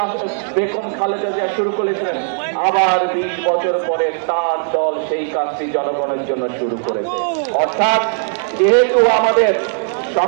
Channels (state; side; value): silent; left; 68 dB below the other